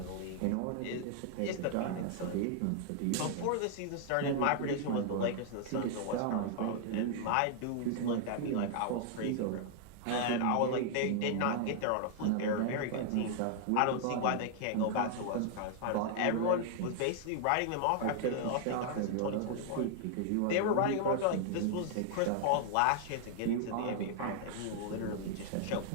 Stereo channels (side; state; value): both; different; correlation -0.01